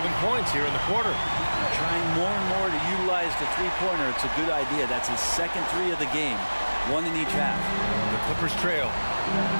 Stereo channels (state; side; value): inverted; both; correlation -1.00